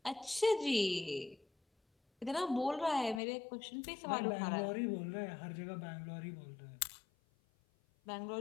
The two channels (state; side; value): drops out; right; at 3.2 s